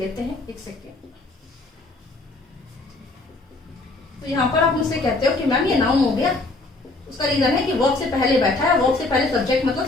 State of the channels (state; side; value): quieter; right; 3.1 dB